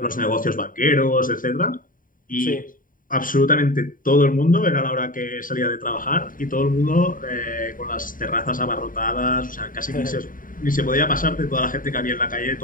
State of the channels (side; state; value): right; late; 0.40 ms